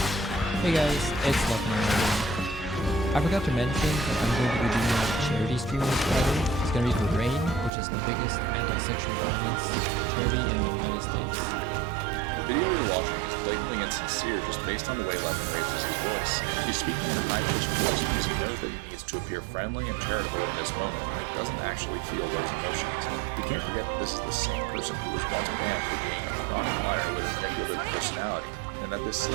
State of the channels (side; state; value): left; drops out; at 7.7 s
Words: Hey guys, it's Leffen. I forgot to mention that I'm going to be doing a charity stream on Friday. It's going to be for RAIN, which is the biggest anti-sexual violence charity in the United States. The video you're watching is blatantly insincere just based on the way Leffen raises his voice. He's speaking in a high-pitched voice because he knows that he needs to appear friendly and charitable in this moment, and he doesn't actually feel those emotions. We can't forget that this is the same person who was once banned for being a chronic liar with a manipulative personality, and that this